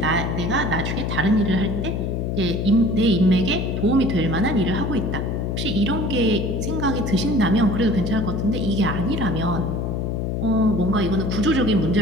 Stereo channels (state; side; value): noise; left; hum, 1 dB below the sound